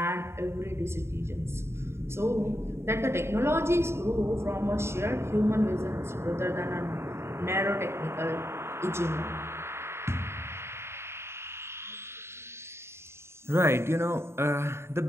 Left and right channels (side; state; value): left; late; 0.12 ms